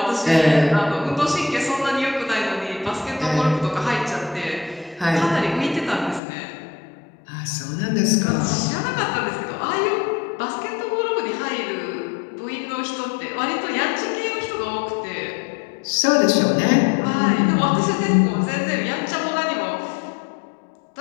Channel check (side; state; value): right; drops out; at 6.2 s